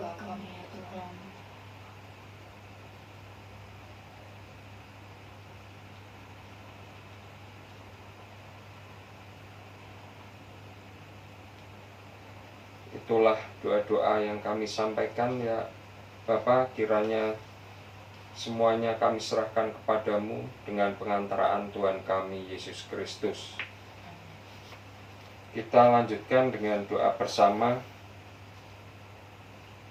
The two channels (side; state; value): both; identical; correlation 1.00